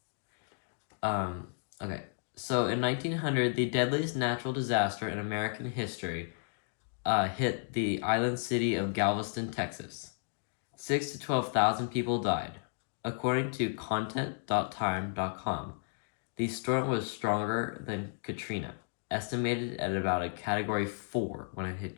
Okay. So in 1900, the deadliest natural disaster in American history hit the island city of Galveston, Texas. 6 to 12,000 people died. According to content.time.com, the storm was stronger than Katrina, estimated at about a Category 4 when it hit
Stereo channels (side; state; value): right; silent; digital silence